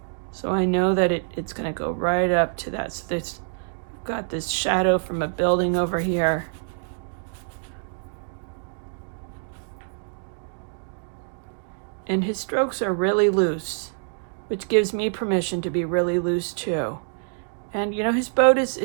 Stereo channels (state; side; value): silent; left; digital silence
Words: So I know that it's going to go right up to that. So there's got this shadow from a building over here. And his strokes are really loose, which gives me permission to be really loose too. And you know, his boat is,